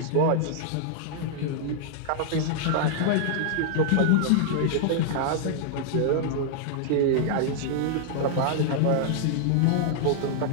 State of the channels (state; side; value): different; both; correlation -0.01